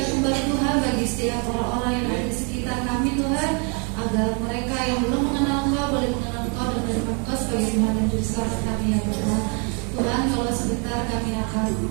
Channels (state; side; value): quieter; left; 36.3 dB